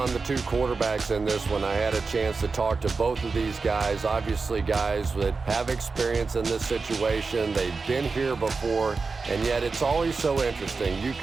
the two quarterbacks in this one. I had a chance to talk to both of these guys, obviously guys that have experience in this situation. They've been here before, and yet it's always so interesting. You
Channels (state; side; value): quieter; left; 4.4 dB